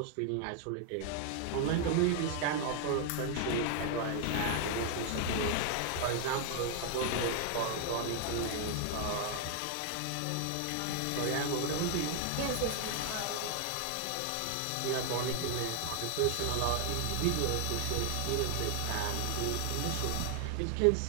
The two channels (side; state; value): both; different; correlation 0.00